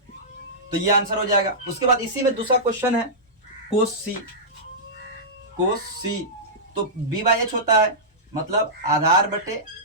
तो ये आंसर हो जाएगा। उसके बाद इसी में दूसरा क्वेश्चन है कोस सी, तो बी बाई एच होता है, मतलब आधार बटे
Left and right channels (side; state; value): both; normal; correlation -0.15